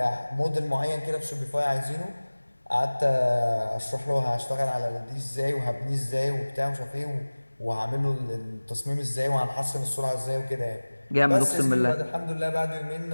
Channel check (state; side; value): inverted; both; correlation -1.00